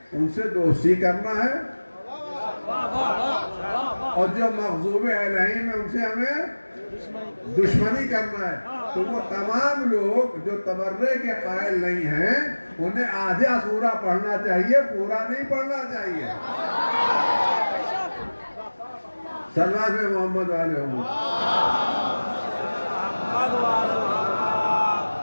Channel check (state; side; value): inverted; both; correlation -1.00